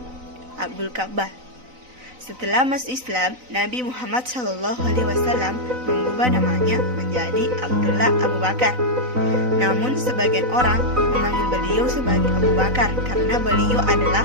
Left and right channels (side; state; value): left; late; 4.0 ms